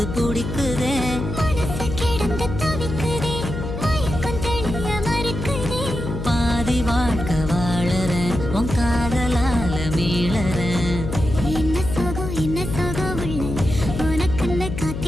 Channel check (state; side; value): noise; left; hum, 6 dB below the sound